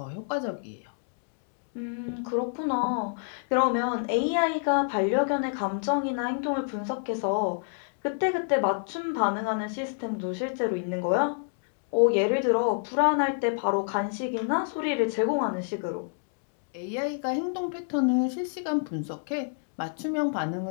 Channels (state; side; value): silent; right; digital silence